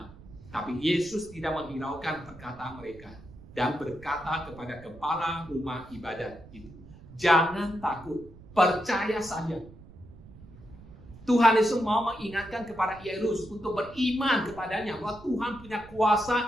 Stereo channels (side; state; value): right; noise; rumble, 19 dB below the sound